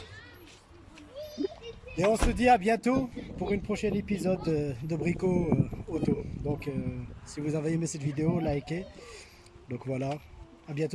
Et on se dit à bientôt pour une prochaine épisode de Brico Auto. Donc si vous avez aimé cette vidéo, likez. Donc voilà, à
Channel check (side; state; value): both; identical; correlation 1.00